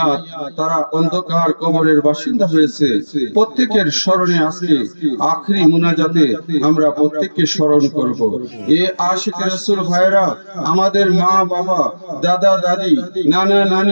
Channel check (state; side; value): inverted; both; correlation -1.00